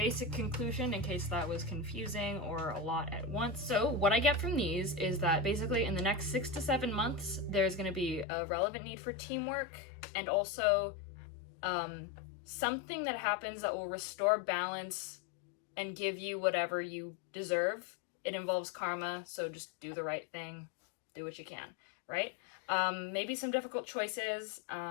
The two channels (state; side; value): drops out; right; at 8.2 s